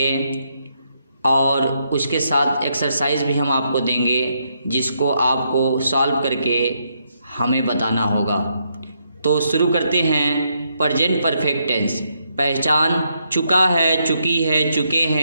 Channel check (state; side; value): inverted; both; correlation -0.77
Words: और उसके साथ एक्सरसाइज भी हम आपको देंगे जिसको आपको सॉल्व करके हमें बताना होगा। तो शुरू करते हैं। प्रेजेंट परफेक्ट टेंस पहचान: चुका है, चुकी है, चुके